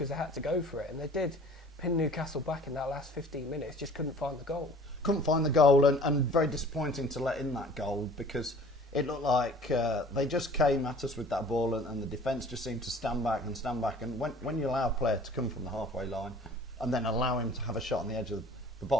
they had to go for it, and they did pin Newcastle back in that last 15 minutes, just couldn't find the goal. Couldn't find the goal, and very disappointing to let in that goal because it looked like they just came at us with that ball and the defence just seemed to stand back, and when you allow a player to come from the halfway line and then allow him to have a shot on the edge of the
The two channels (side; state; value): both; normal; correlation 0.48